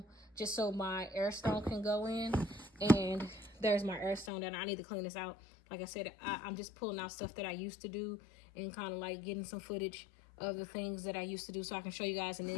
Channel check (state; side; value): drops out; right; at 4.3 s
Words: just so my air stone can go in. And there's my air stone that I need to clean this out. Like I said, I'm just pulling out stuff that I used to do and kind of like getting some footage of the things that I used to do so I can show you guys, and